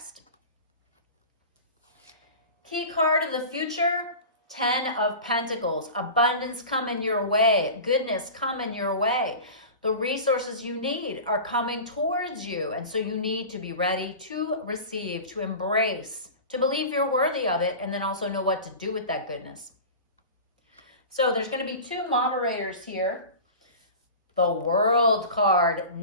Key card of the future, 10 of Pentacles. Abundance coming your way. Goodness coming your way. The resources you need are coming towards you. And so you need to be ready to receive, to embrace, to believe you're worthy of it, and then also know what to do with that goodness. So there's going to be 2 moderators here. The World card,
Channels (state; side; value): inverted; both; correlation -0.34